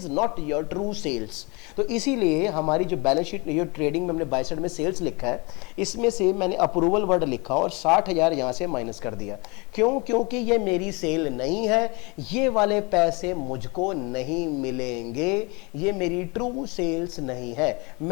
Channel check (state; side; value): quieter; right; 28.2 dB